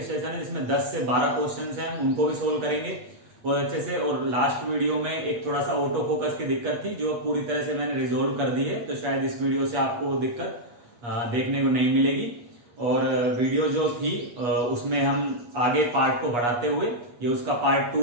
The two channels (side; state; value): left; late; 8.4 ms